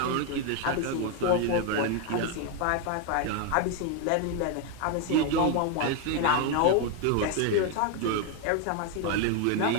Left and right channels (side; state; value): both; different; correlation 0.01